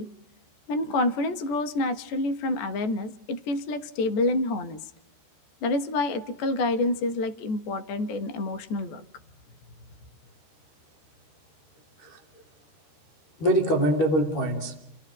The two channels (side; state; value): right; late; 14 ms